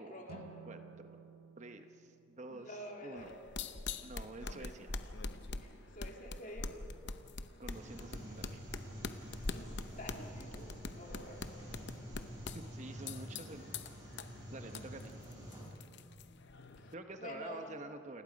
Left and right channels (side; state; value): both; normal; correlation 0.52